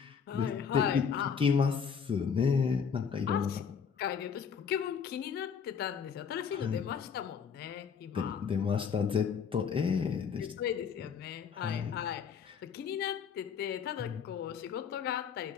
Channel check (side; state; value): right; quieter; 6.7 dB